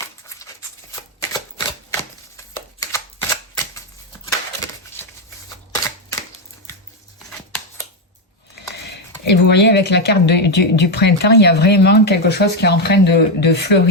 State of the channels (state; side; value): normal; both; correlation 0.06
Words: Et vous voyez, avec la carte du printemps, il y a vraiment quelque chose qui est en train de